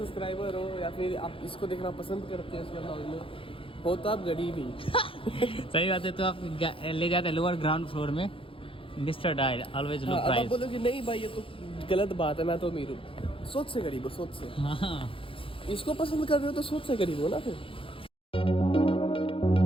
हो या फिर आप इसको देखना पसंद करते हैं इसके ब्लॉग में, हो तो आप गरीब ही। सही बात है। तो आप ले जाते हैं लोअर ग्राउंड फ्लोर में, मिस्टर डायल ऑलवेज लो अब आप प्राइस। बोलोगे नहीं भाई ये तो गलत बात है, मैं तो अमीर हूँ। सोच से गरीब हो, सोच से। हाँ इसको पसंद कर रहे हो तो सोच से गरीब हो ना फिर।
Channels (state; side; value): late; right; 0.26 ms